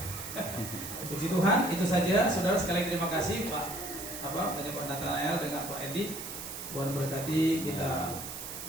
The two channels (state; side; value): noise; right; hiss, 8 dB below the sound